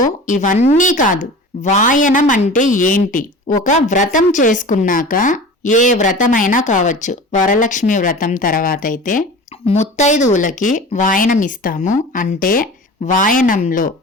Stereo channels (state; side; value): normal; both; correlation 0.37